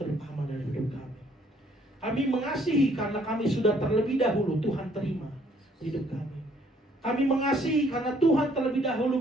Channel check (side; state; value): both; normal; correlation 0.63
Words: dari hidup kami. Kami mengasihi karena kami sudah terlebih dahulu Tuhan terima hidup kami. Kami mengasihi karena Tuhan terlebih